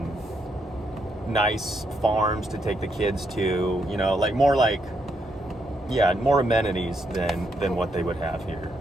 nice farms to take the kids to, you know, like more amenities than what they would have here.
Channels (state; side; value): normal; both; correlation 0.78